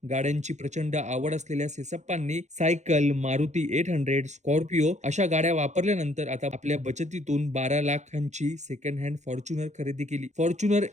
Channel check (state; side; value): late; left; 0.34 ms